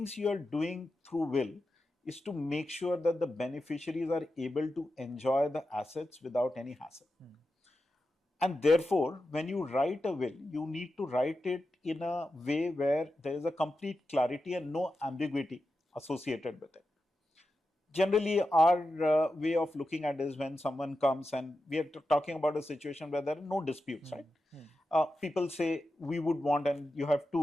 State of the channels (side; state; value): both; normal; correlation 0.90